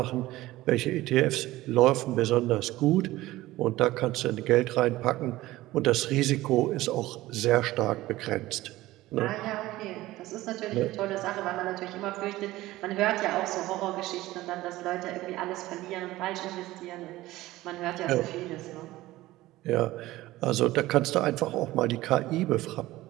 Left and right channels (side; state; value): left; quieter; 17.2 dB